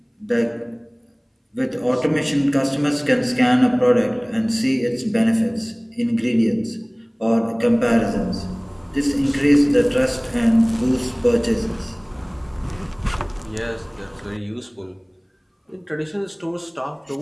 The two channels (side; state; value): both; identical; correlation 1.00